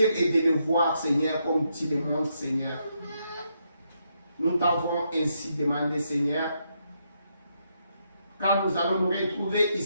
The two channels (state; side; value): inverted; both; correlation -0.79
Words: et de le voir, Seigneur, comme tu le montres, Seigneur. Nous t'avons ainsi demandé, Seigneur. Quand nous allons nous retrouver